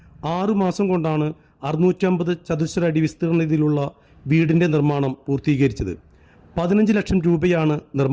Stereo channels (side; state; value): both; identical; correlation 1.00